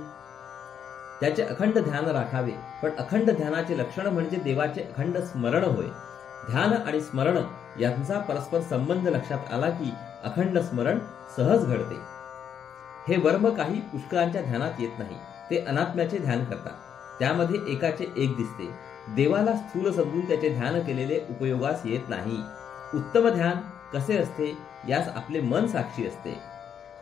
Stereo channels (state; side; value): quieter; right; 8.4 dB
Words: त्याचे अखंड ध्यान राखावे. पण अखंड ध्यानाचे लक्षण म्हणजे देवाचे अखंड स्मरण होय. ध्यान आणि स्मरण यांचा परस्पर संबंध लक्षात आला की अखंड स्मरण सहज घडते. हे वर्म काही पुष्कळांच्या ध्यानात येत नाही. ते अनात्म्याचे ध्यान करतात. त्यामध्ये एकाचे एक दिसते. देवाला स्थूल समजून त्याचे ध्यान केलेले उपयोगास येत नाही. उत्तम ध्यान कसे असते यास आपले मन साक्षी असते.